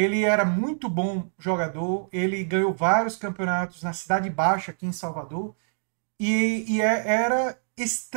era muito bom jogador, ele ganhou vários campeonatos na Cidade Baixa, aqui em Salvador, era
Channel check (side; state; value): left; silent; digital silence